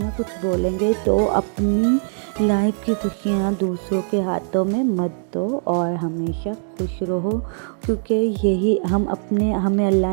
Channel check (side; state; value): left; silent; 65 dB below the other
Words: कुछ बोलेंगे। तो अपनी लाइफ की खुशियाँ दूसरों के हाथों में मत दो और हमेशा खुश रहो, क्योंकि यही हमें